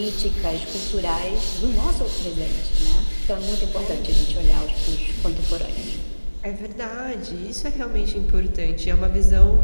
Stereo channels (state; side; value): inverted; both; correlation -1.00